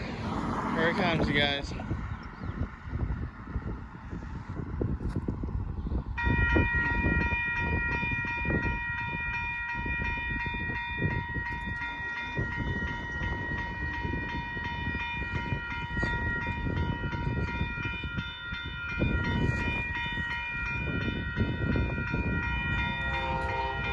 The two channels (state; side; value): identical; both; correlation 1.00